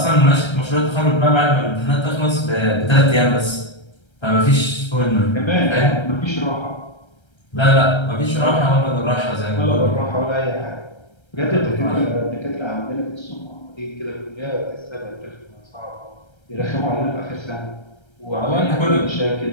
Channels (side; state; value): right; late; 1.3 ms